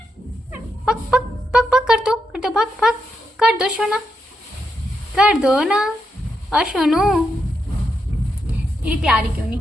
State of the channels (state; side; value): normal; both; correlation 0.83